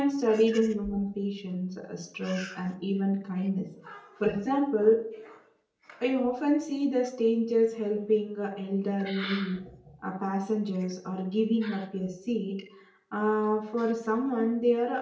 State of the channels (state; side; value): identical; both; correlation 1.00